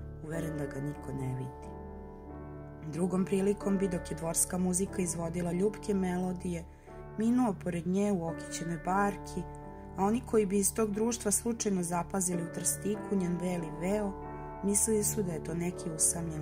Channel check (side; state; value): both; identical; correlation 1.00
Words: uveren da ga niko ne vidi. Drugom prilikom bi, dok je dvorska muzika izvodila ljubke melodije, minuo pored nje u okićenoj barki, a oni koji bi iz tog društva slučajno zapazili u trstiku njen beli veo, mislili su da je to neki